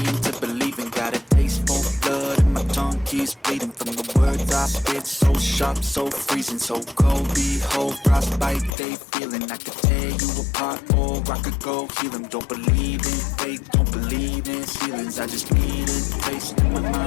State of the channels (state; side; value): drops out; right; at 8.8 s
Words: to believing. Got a taste for blood and my tongue keeps bleeding. From the words I spit, so sharp, so freezing. So cold, behold, frostbite they feeling. I could tear you apart or I could go heal them. Don't believe in fate, don't believe in ceilings. I just need a taste and my